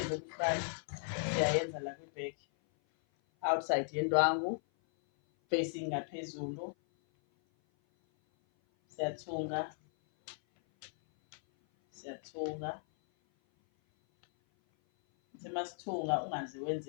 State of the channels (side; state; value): right; silent; 54 dB below the other